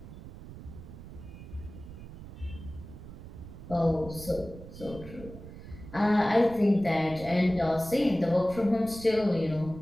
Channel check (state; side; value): noise; right; rumble, 14 dB below the sound